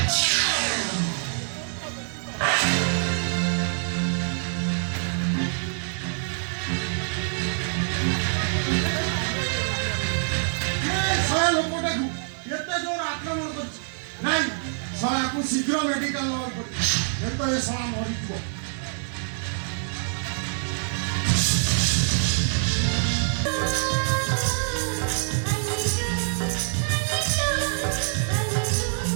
ଶଳା ଲୋକଟାକୁ ଏତେ ଜୋର ଆକ୍ରମଣ କରିଛି ନାଇଁ ଶଳାକୁ ଶୀଘ୍ର ମେଡିକାଲ ନେବାକୁ ପଡିବ ଏ ତ ଏ ଶଳା ମରିଯିବ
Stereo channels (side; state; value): left; silent; 61 dB below the other